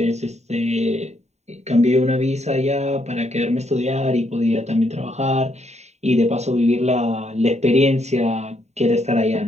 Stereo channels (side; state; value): left; late; 0.32 ms